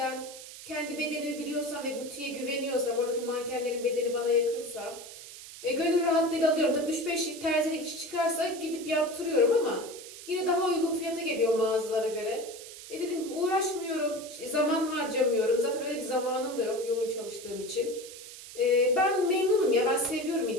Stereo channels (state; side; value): noise; right; hiss, 14 dB below the sound